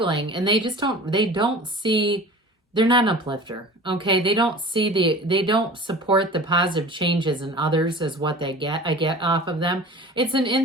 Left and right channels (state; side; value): normal; both; correlation 0.40